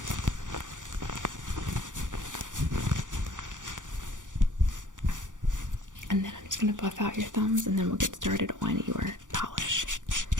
And then I'm just gonna buff out your thumbs, and then we'll get started on your polish.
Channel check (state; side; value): late; left; 0.87 ms